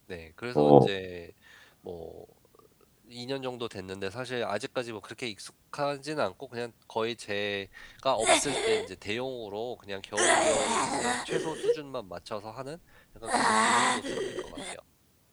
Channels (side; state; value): both; identical; correlation 1.00